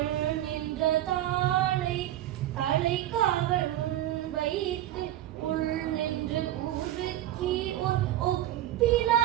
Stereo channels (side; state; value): left; quieter; 13.3 dB